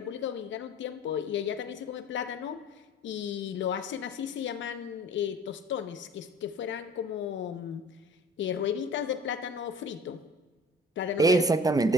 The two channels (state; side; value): normal; both; correlation 0.45